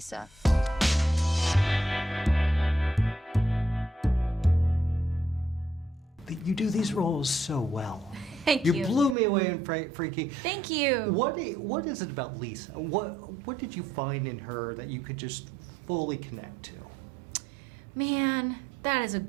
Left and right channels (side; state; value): left; drops out; at 9.2 s